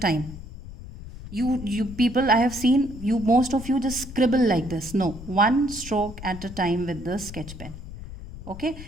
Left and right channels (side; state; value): left; noise; rumble, 13 dB below the sound